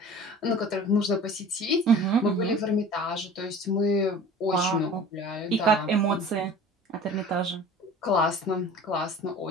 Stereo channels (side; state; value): both; normal; correlation 0.42